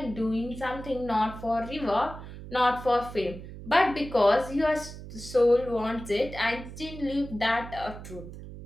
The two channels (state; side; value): noise; right; hum, 13 dB below the sound